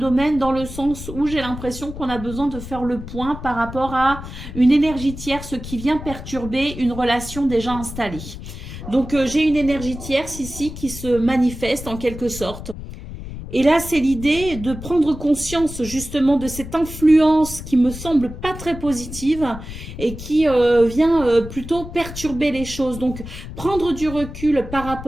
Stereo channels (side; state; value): left; noise; rumble, 11 dB below the sound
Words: dans le sens où j'ai l'impression qu'on a besoin de faire le point par rapport à une énergie tierce qui vient perturber une relation déjà installée. Donc, j'ai une énergie tierce ici qui se manifeste en quelque sorte. Et là, c'est l'idée de prendre conscience justement de cette influence qui me semble pas très positive et qui vient plutôt perturber les choses. Donc, prendre du recul par